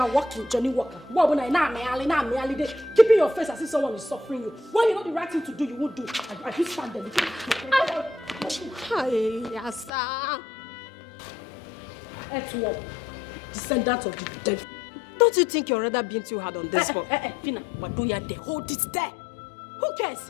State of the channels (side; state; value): right; drops out; at 9.9 s